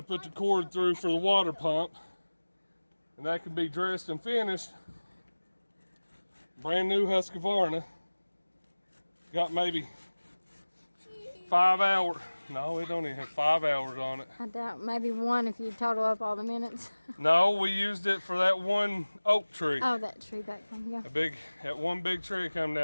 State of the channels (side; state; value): both; inverted; correlation -1.00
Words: put the cord through for the water pump, and that can be dressed and finished. Brand new Husqvarna. Got maybe 5 hours. No, we don't even have 5 hours on it. I doubt, maybe 1 if you total up all the minutes. No, we used it for that one oak tree. Oh, that tree back there, yeah. That one big tree come